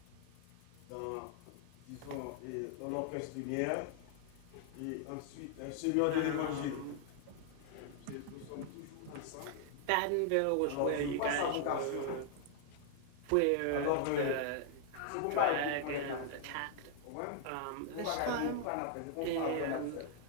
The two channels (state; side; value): different; both; correlation 0.00